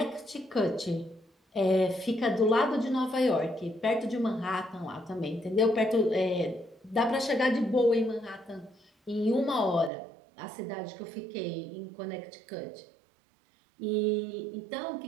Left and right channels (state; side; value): drops out; left; at 9.9 s